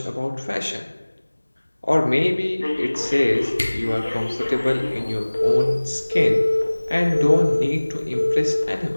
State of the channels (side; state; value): both; inverted; correlation -1.00